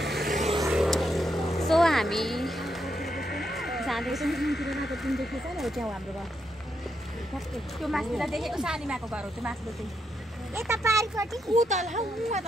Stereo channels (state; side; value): normal; both; correlation 0.80